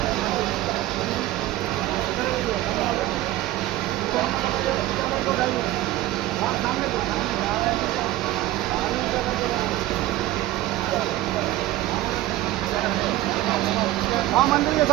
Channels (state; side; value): quieter; left; 15.8 dB